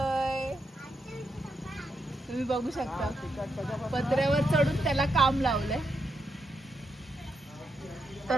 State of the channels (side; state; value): both; normal; correlation 0.83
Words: तुम्ही बघू शकता पत्र्यावर चढून त्याला काम लावलंय.